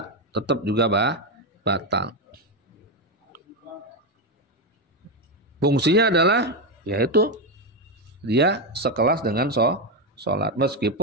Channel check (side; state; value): both; normal; correlation 0.09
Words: tetap juga batal. Fungsinya adalah yaitu dia sekelas dengan sholat.